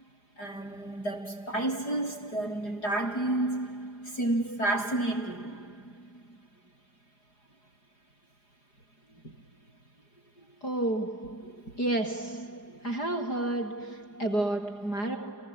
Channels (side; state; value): right; late; 4.9 ms